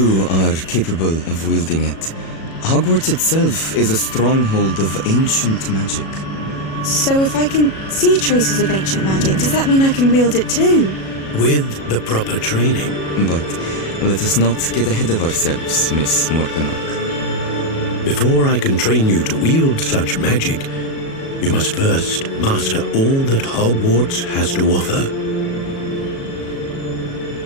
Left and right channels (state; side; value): late; right; 37 ms